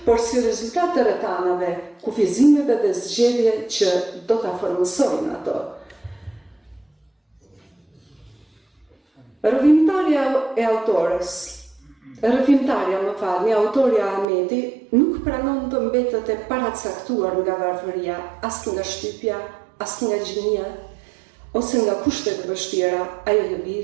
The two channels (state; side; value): drops out; left; at 14.2 s